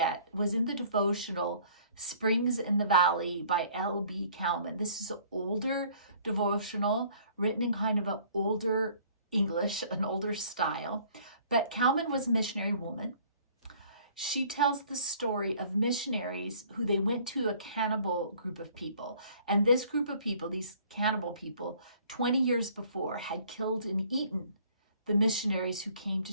was in the devotional Springs in the Valley by L.B. Cowman. This is an older devotional written in kind of an older English, an older style. But Cowman was a missionary woman. She tells the story of missionaries who they went to a cannibal group of people. And this group of people, these cannibal people, 20 years before had killed and eaten the missionaries who came to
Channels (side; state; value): both; inverted; correlation -0.56